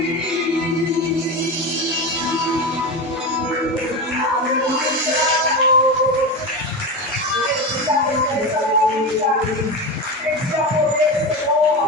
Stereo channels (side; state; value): both; normal; correlation 0.20